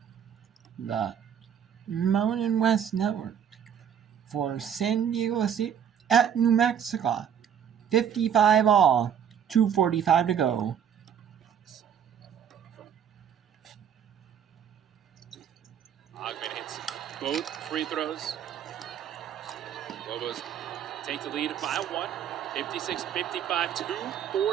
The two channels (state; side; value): quieter; left; 8.6 dB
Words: the Mountain West Network for San Diego State at New Mexico. 55 all, 2:45 to go. Ogman hits both free throws. Lobos take the lead by one. 56-55,